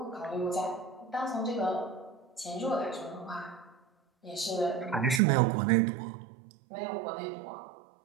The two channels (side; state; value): left; drops out; at 5.2 s